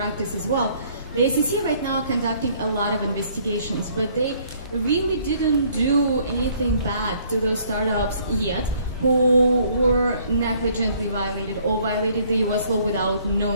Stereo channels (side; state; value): both; inverted; correlation -0.62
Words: as well, the SEC right now are conducting a lot of investigations, but they really didn't do anything bad to those startups yet who were negligently violated or violated the US law without